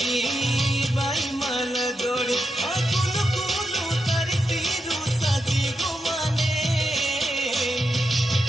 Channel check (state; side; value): normal; both; correlation 0.86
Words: बाई मल जोड़ी अकुल कुलू तरसी रूसा जी गुमाने